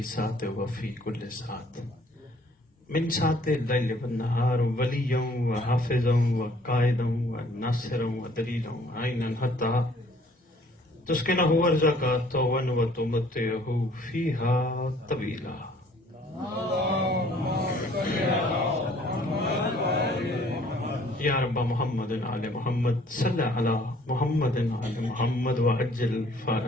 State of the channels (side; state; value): both; normal; correlation 0.58